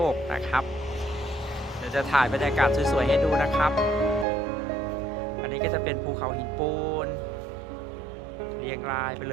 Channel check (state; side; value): drops out; left; at 4.2 s